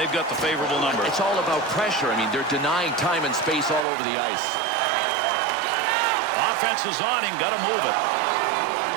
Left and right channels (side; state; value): left; drops out; at 3.9 s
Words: got the favorable number. It's all about pressure. I mean, they're denying time and space all over the ice. Offense is on him, got to move it.